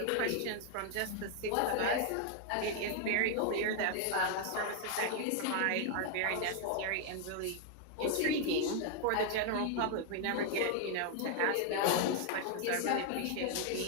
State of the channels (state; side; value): different; both; correlation 0.00